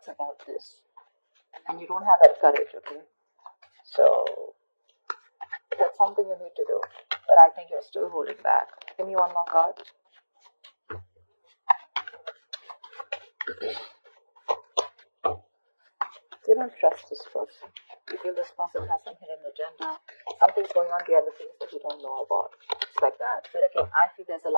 about this. And you don't have that courage, okay? So, that's something you need to do. But I think you're still holding back. Give me one more card. You don't trust this person. You feel this person has some hidden agenda. Something's going on behind the scenes that you don't know about. It's like that. But again, I feel there's a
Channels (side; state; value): both; inverted; correlation -1.00